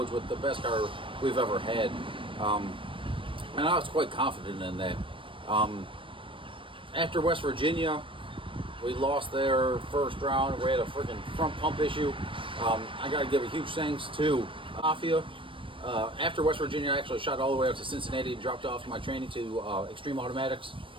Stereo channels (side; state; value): left; late; 0.25 ms